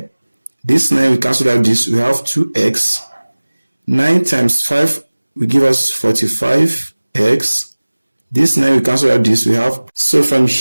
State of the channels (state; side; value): inverted; both; correlation -1.00